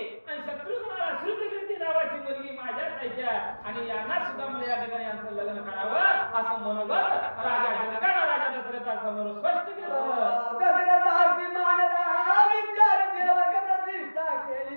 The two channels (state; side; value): inverted; both; correlation -1.00